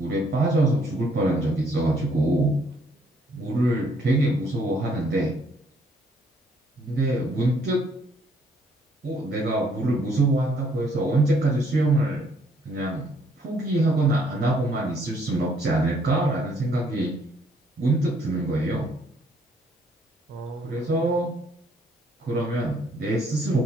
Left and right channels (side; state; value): both; normal; correlation 0.66